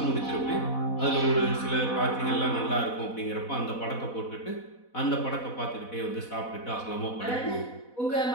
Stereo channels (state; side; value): late; right; 4.1 ms